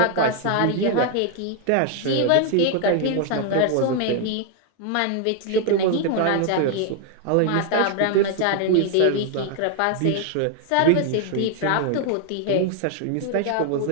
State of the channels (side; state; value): both; different; correlation 0.00